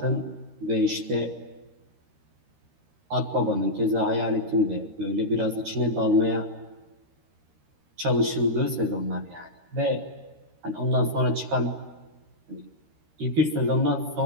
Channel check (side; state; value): left; late; 13 ms